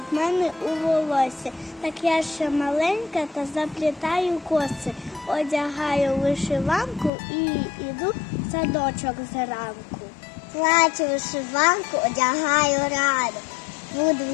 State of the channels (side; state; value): right; drops out; at 7.1 s